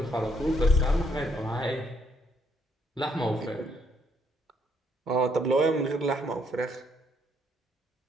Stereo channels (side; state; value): both; normal; correlation 0.71